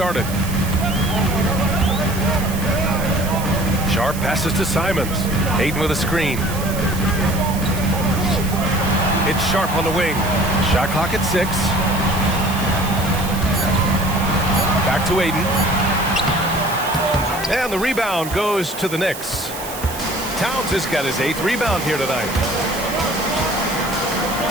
Sharp passes to Simons. Ayton with a screen. It's Sharp on the wing. Shot clock at 6. Back to Ayton. And the rebound goes to the Knicks. Towns has got his 8th rebound here tonight.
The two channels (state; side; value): noise; right; hiss, 11 dB below the sound